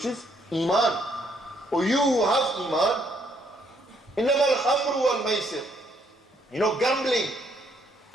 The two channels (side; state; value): both; normal; correlation 0.70